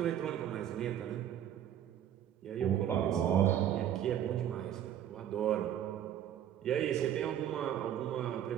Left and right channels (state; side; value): quieter; left; 10.6 dB